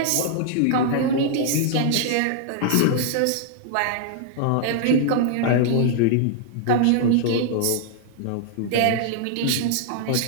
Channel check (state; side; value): different; both; correlation -0.01